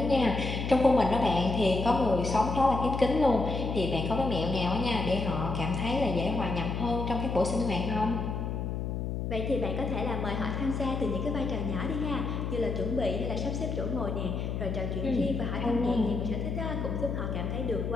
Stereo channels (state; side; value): noise; left; hum, 3 dB below the sound